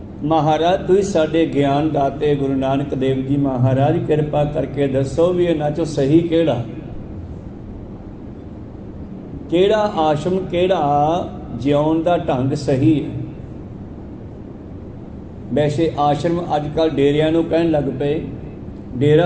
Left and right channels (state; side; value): identical; both; correlation 1.00